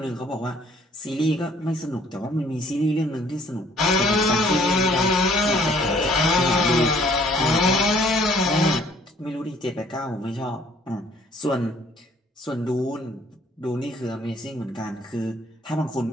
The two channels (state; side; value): normal; both; correlation 0.59